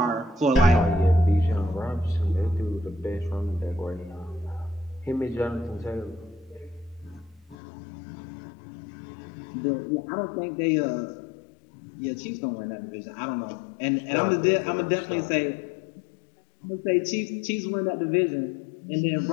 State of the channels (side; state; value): right; drops out; at 7.6 s